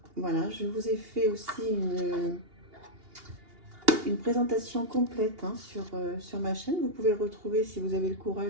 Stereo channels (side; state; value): left; late; 2.8 ms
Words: Voilà, je vous ai fait aussi une présentation complète hein, sur ma chaîne. Vous pouvez le retrouver si vous avez le